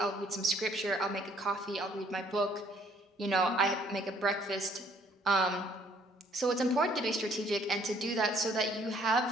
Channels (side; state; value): both; normal; correlation 0.62